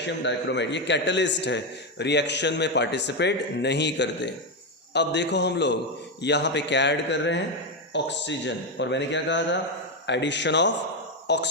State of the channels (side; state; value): both; normal; correlation 0.07